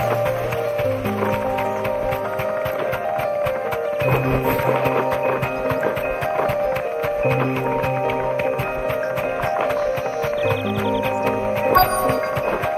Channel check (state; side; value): identical; both; correlation 1.00